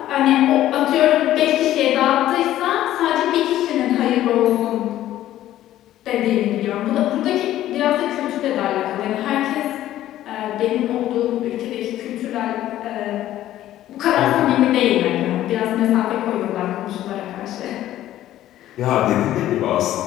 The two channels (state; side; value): quieter; right; 13.3 dB